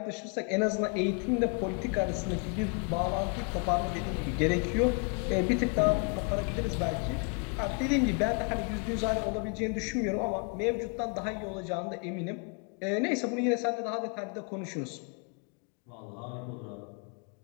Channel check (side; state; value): right; quieter; 35.5 dB